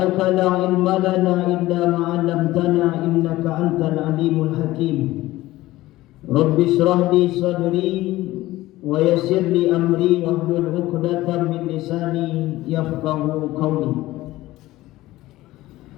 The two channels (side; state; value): right; quieter; 17.1 dB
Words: la ilma lana illa ma 'allamtana innaka antal alimul hakim. Rabbi shrah li sadri wa yassir li amri wahlul 'uqdatam min lisani yafqahu qawli.